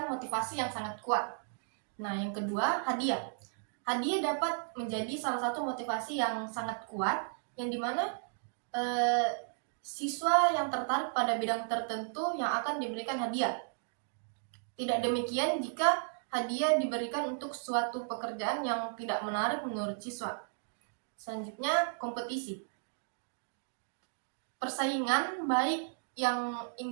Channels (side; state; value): left; silent; digital silence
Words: motivasi yang sangat kuat. Nah, yang kedua, hadiah. Hadiah dapat menjadi salah satu motivasi yang sangat kuat, yang dimana siswa yang tertarik pada bidang tertentu yang akan diberikan hadiah. Tidak demikian jika hadiah diberikan untuk suatu pekerjaan yang tidak menarik menurut siswa. Selanjutnya, kompetisi. Persaingan baik yang